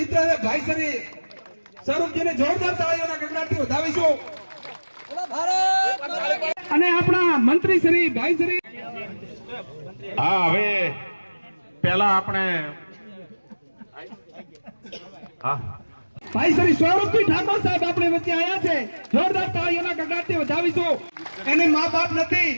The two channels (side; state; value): both; inverted; correlation -1.00